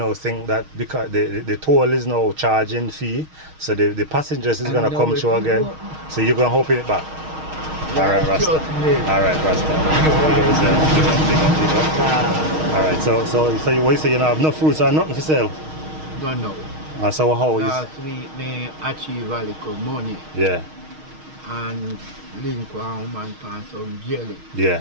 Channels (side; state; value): left; late; 6.4 ms